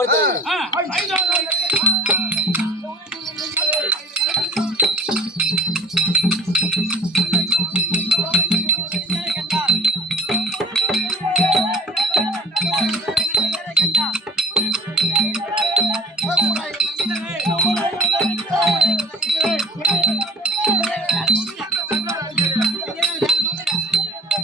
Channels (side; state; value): both; normal; correlation 0.44